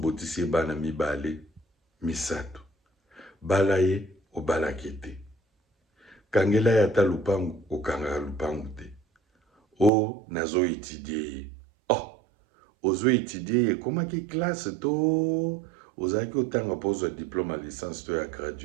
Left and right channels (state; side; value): drops out; left; at 9.9 s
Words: bana mibale, misato. Balaye, obalakete. Kangela yata lupangu, okanga lupangu te. O, nazo étudier. Oh, ozo étudier, comment ki classe to? Ozaki otanga pose diplôme à licence to ya